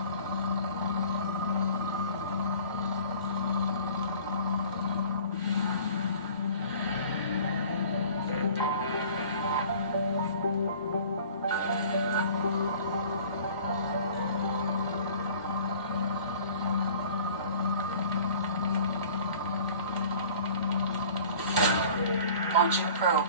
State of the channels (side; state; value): both; inverted; correlation -0.47